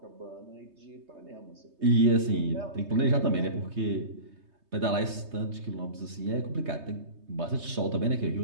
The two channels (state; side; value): late; left; 3.2 ms